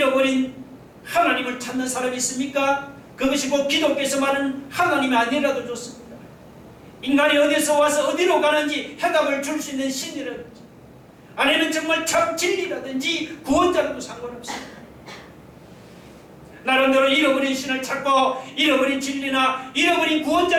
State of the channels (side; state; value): both; identical; correlation 1.00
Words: 하나님을 찾는 사람이 있습니까? 그것이 곧 기독교에서 말하는 하나님이 아니라도 좋습니다. 인간이 어디서 와서 어디로 가는지 해답을 줄 수 있는 신이라든지 아니면 정말 참 진리라든지 구원자라도 상관없습니다. 나름대로 잃어버린 신을 찾고 잃어버린 진리나 잃어버린